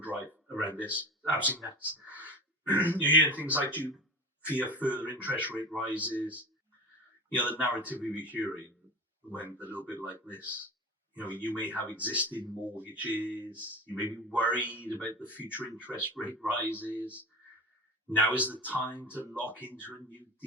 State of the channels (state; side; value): normal; both; correlation 0.31